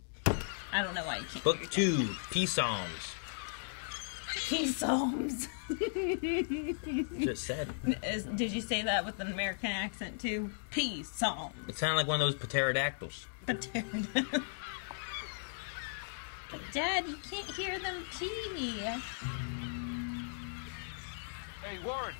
I don't know why you can't. Book 2, Peace Psalms. Peace Psalms. Just said. Did you say that with an American accent too? Peace Psalms. It sounded like one of those pterodactyls. Dad, you can't hear them pee. Hey, Warren.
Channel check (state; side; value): silent; right; digital silence